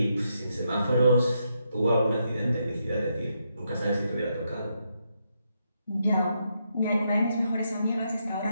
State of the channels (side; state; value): both; inverted; correlation -0.80